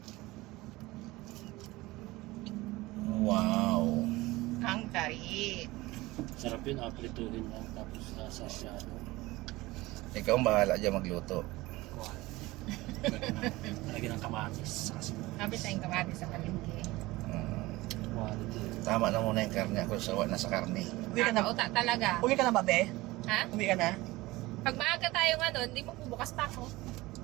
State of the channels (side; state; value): left; quieter; 19.9 dB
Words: Wow. Ang tari. Sarap yun, aprituhin lang, tapos sa shadow. Ikaw ang bahala dyan magluto. Kuhan. Lagyan ng kamatis. Kasi Sabi tayong kamati sa palengke. quality. Tama na muna yung karne. Ako sawa na sa karne. Uwi ka na. Kakauta talaga. Uwi ka na ba, be? Ha? Uwi ka na? Pag maaga tayo nga doon, hindi magbubukas pa ako.